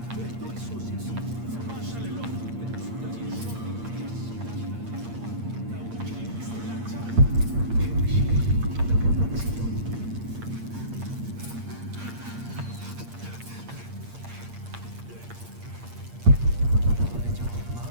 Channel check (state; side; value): late; left; 8.6 ms